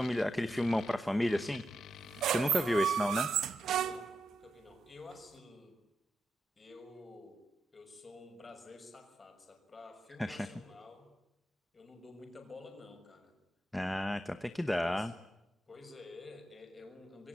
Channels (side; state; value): both; normal; correlation 0.85